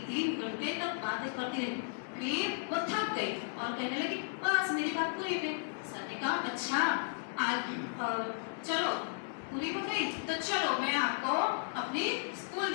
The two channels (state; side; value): silent; right; digital silence